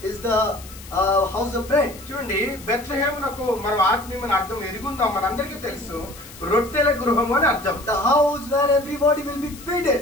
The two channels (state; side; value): noise; left; hiss, 18 dB below the sound